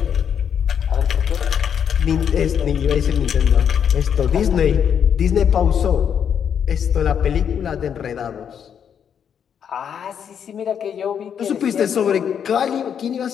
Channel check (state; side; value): quieter; right; 8.1 dB